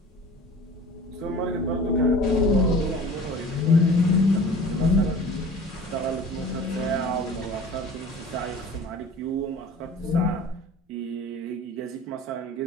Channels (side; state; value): both; normal; correlation 0.43